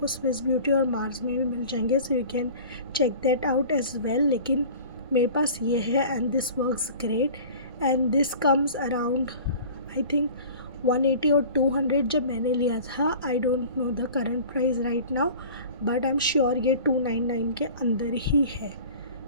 स्विस ब्यूटी और मार्स में भी मिल जाएंगे, so you can check that out as well. लेकिन मेरे पास ये है and this works great. And this comes around I think 180 और 200 जब मैंने लिया था। I don't know the current price right now, but I am sure ये 299 के अंदर ही है।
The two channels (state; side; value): inverted; both; correlation -0.42